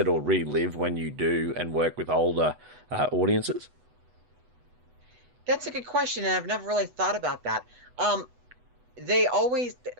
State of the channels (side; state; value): left; late; 8.1 ms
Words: or relive when you do and work with older audiences? That's a good question, and I've never really thought about that. Um, they always